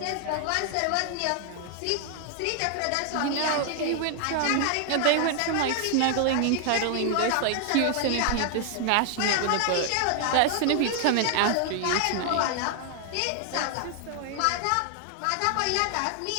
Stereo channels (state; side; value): different; both; correlation 0.00